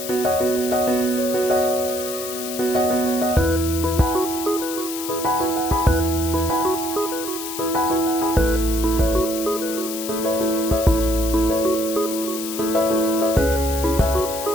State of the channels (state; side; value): noise; left; hiss, 8 dB below the sound